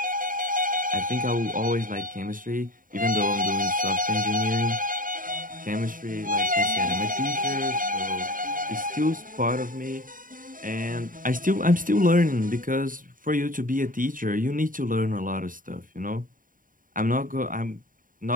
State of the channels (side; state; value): left; late; 0.40 ms